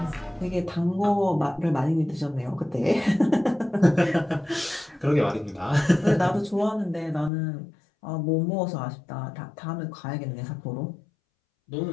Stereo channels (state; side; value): drops out; right; at 7.3 s